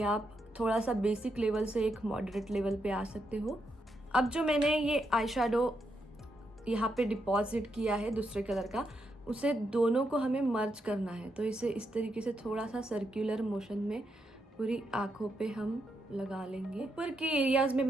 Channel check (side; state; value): both; normal; correlation 0.81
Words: आप थोड़ा सा बेसिक लेवल से एक मॉडरेट लेवल पे आ सकते हो। अब जो मैंने ये आई शेडो यहाँ पे डिपॉजिट किया है दूसरे कलर का, उसे दोनों को हमें मर्ज करना है। तो इसे इस तरीके से थोड़ा सा सर्कुलर मोशन में पूरी आँखों पे हम लगा लेंगे। ऊपर के एरियाज़ में